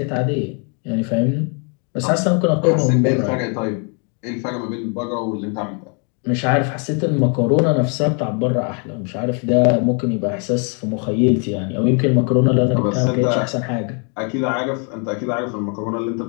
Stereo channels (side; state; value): right; quieter; 38.5 dB